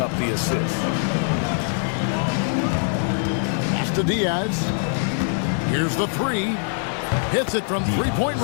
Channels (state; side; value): silent; right; 58 dB below the other